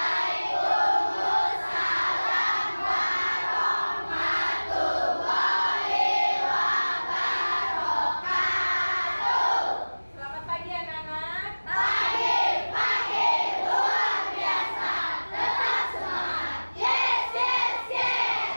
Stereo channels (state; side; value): inverted; both; correlation -1.00